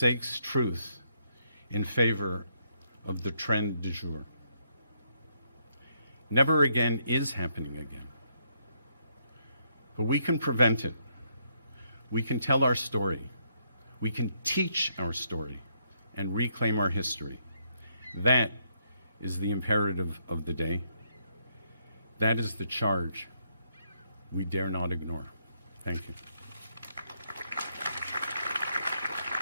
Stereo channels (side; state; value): both; inverted; correlation -0.74